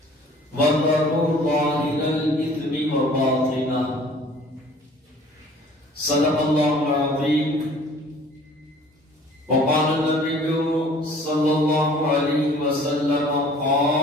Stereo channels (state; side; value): normal; both; correlation 0.52